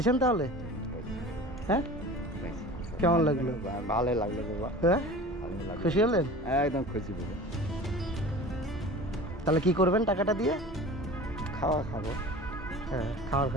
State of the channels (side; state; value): both; normal; correlation 0.39